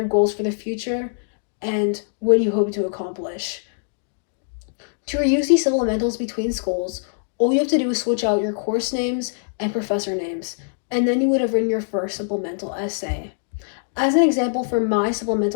goals for the future and what you hope to accomplish. To reuse these supplementals between schools, all you have to do is switch out your course names and professor names, and then you would have written your first supplemental essay. As an example for my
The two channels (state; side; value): silent; right; digital silence